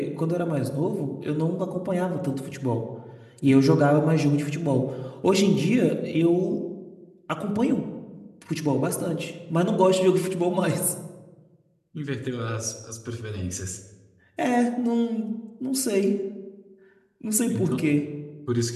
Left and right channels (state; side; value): identical; both; correlation 1.00